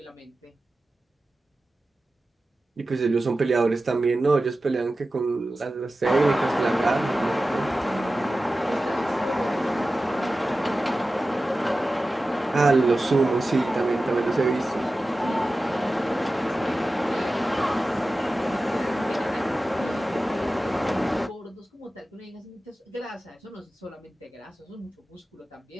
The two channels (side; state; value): both; normal; correlation 0.94